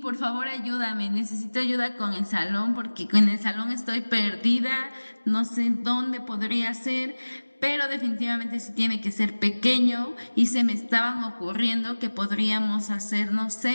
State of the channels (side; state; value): both; inverted; correlation -1.00